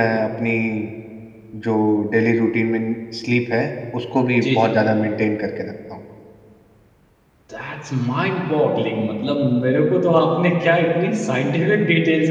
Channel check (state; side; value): identical; both; correlation 1.00